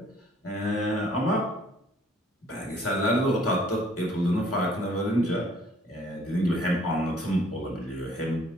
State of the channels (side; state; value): both; normal; correlation 0.60